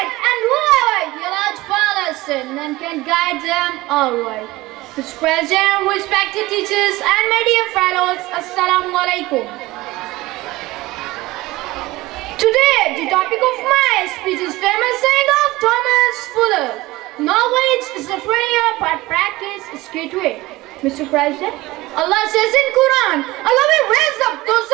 and whoever He allows follow sin, none can guide them alright. Mr. President, respected teachers, and my dear fellows, Assalamu Alaikum. Today, the topic of my speech is famous saying of Thomas Fuller. Knowledge is the treasure, but practice is key to it. Mr. President, Allah says in Quran, Allah will raise up those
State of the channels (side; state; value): left; quieter; 19.4 dB